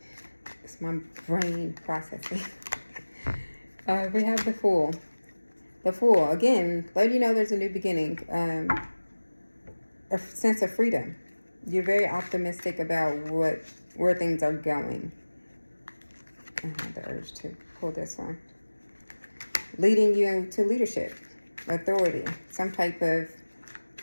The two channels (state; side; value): inverted; both; correlation -1.00